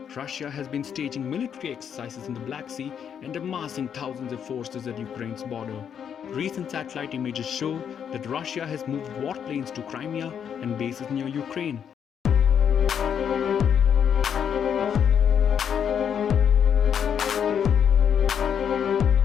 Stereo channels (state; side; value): quieter; right; 8.1 dB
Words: Russia has been staging military exercises in the Black Sea and amassing thousands of forces at Ukraine's border. Recent satellite images show that Russia has moved warplanes to Crimea and bases near Ukraine.